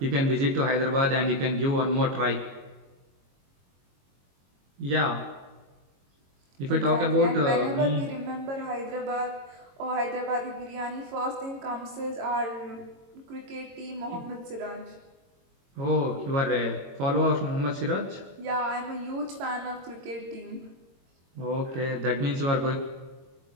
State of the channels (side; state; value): left; late; 22 ms